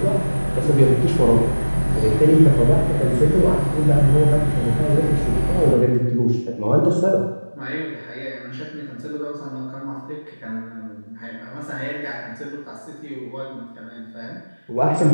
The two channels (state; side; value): inverted; both; correlation -1.00